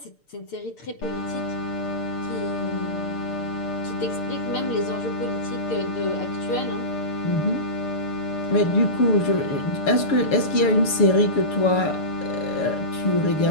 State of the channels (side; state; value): right; late; 6.7 ms